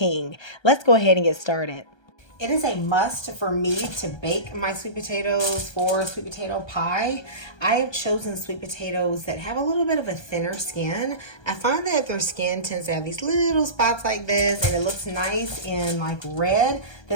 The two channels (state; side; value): late; right; 1.3 ms